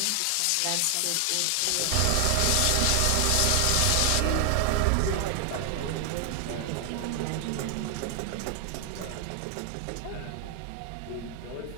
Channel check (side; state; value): both; different; correlation 0.00